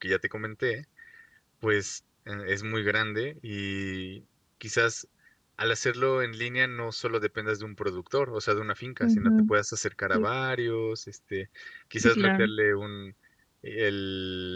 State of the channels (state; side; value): identical; both; correlation 1.00